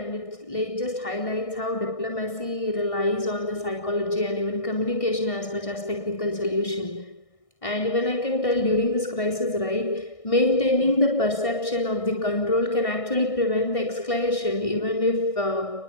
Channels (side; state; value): right; late; 1.6 ms